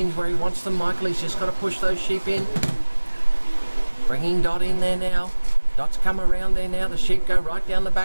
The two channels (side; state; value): both; inverted; correlation -1.00